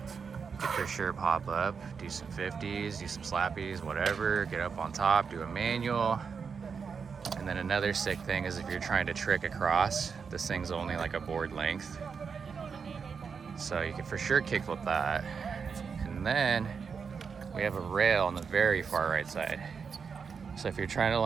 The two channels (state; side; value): quieter; left; 5.9 dB